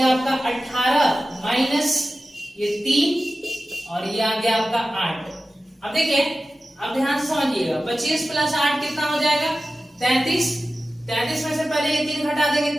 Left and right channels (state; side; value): normal; both; correlation 0.95